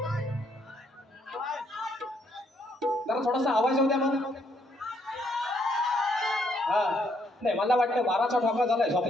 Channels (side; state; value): both; normal; correlation 0.72